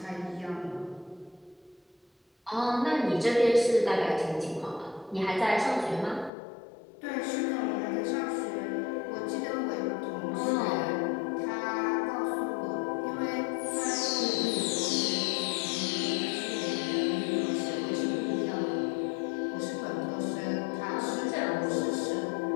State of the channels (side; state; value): right; drops out; at 6.3 s